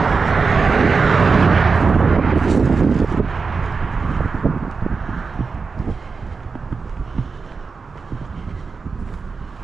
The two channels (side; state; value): left; quieter; 4.8 dB